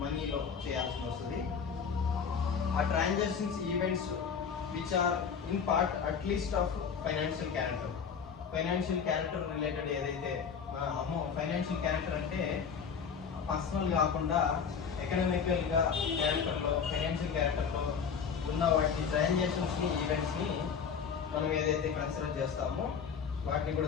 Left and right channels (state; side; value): quieter; right; 6.5 dB